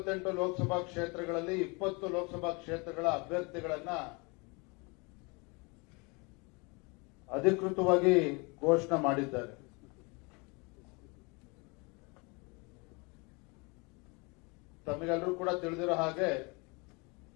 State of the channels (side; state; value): right; quieter; 29.2 dB